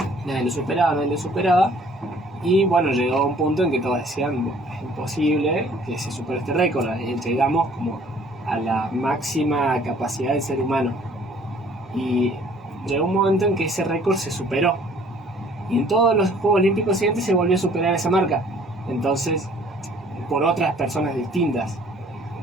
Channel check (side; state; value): both; normal; correlation 0.56